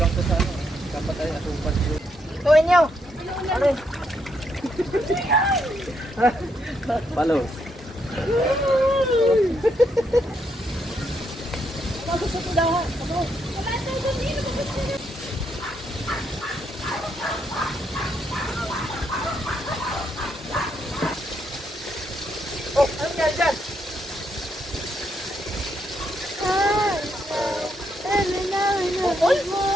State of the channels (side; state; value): both; normal; correlation 0.77